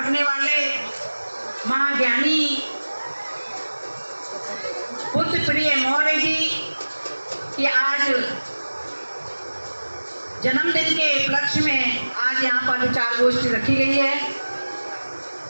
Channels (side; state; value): both; inverted; correlation -1.00